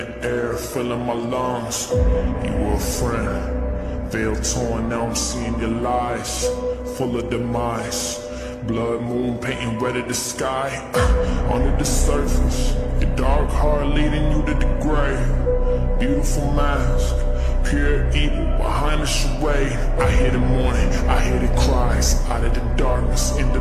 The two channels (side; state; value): both; identical; correlation 1.00